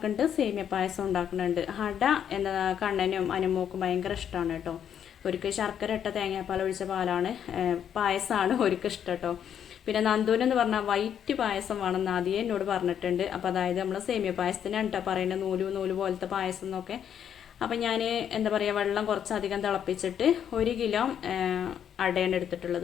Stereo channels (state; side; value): quieter; right; 9.0 dB